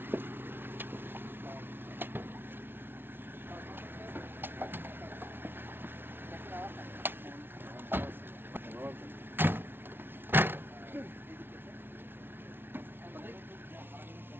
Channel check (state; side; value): late; left; 0.11 ms